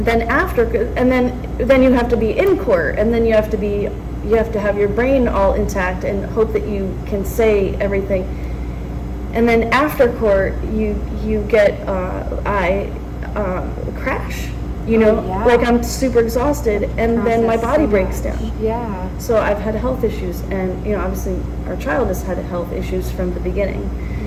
Then after, and then you have to be in court, and then you have to have your brain all intact and hope that you can say everything. And then after court, you get crash. You know, like I'm super exhausted, and then my body breaks down. Yeah. So I've had health issues, and, you know, obviously our child has had health issues from the beginning.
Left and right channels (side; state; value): both; identical; correlation 1.00